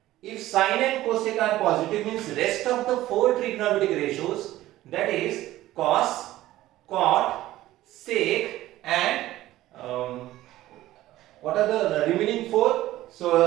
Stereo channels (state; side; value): quieter; left; 15.5 dB